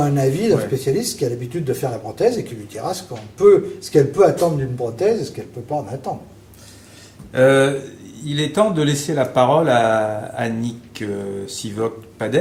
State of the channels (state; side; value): identical; both; correlation 1.00